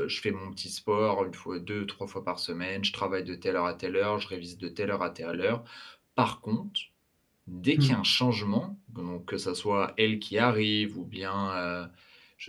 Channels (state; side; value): identical; both; correlation 1.00